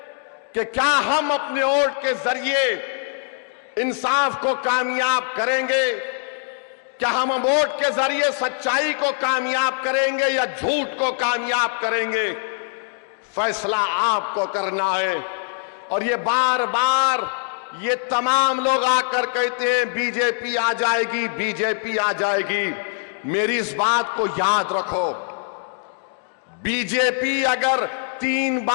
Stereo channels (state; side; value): silent; right; digital silence